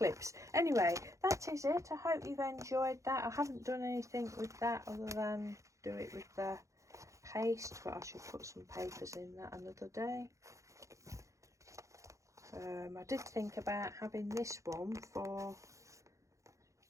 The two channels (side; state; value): left; late; 0.15 ms